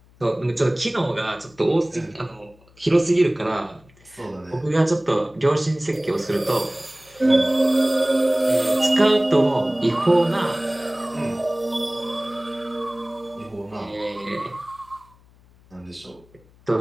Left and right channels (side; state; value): left; noise; hum, 28 dB below the sound